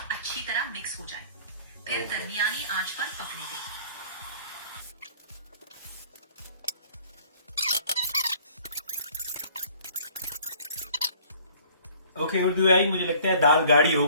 अच्छी तरह मिक्स हो जाए। फिर दरमियानी आंच पर पकने दें। ओके उर्दू आई, मुझे लगता है दाल गाढ़ी हो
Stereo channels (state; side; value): inverted; both; correlation -0.53